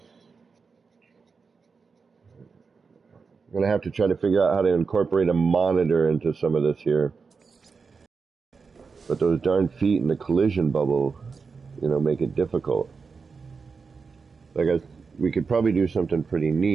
gonna have to try to figure out how to incorporate a monitor into some of this here. But those darn feet in the collision bubble, make it difficult. We could probably do something pretty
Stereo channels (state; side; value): quieter; left; 5.0 dB